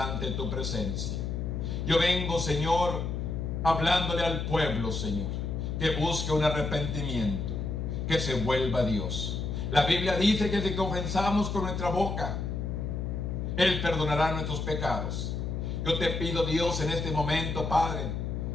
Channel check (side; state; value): left; noise; hum, 2 dB below the sound